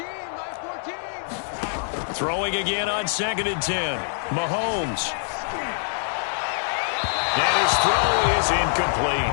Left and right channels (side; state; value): right; silent; digital silence